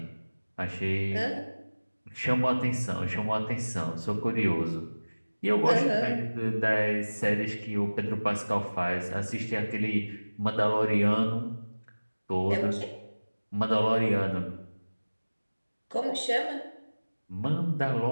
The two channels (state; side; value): inverted; both; correlation -1.00